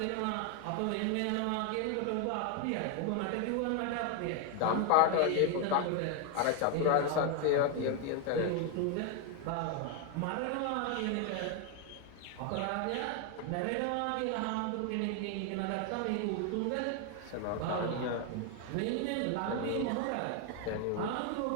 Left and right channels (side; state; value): both; different; correlation 0.01